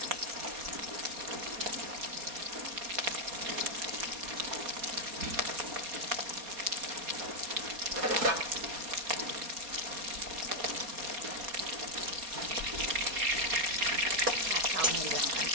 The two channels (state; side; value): late; left; 4.2 ms